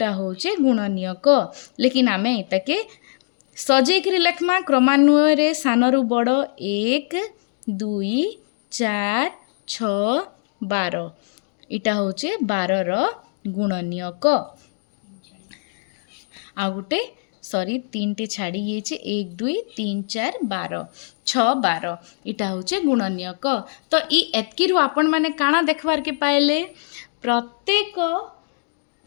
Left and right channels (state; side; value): silent; right; digital silence